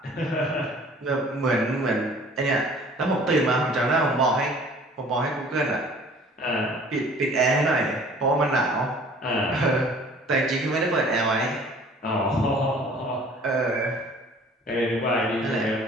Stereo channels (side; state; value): both; normal; correlation 0.51